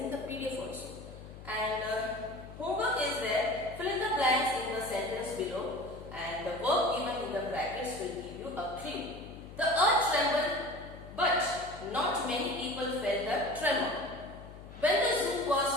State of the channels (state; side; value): noise; left; hum, 15 dB below the sound